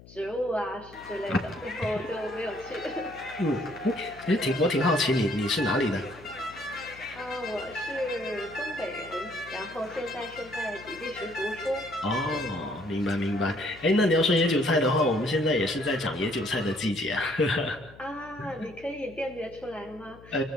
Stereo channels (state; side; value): noise; left; hum, 21 dB below the sound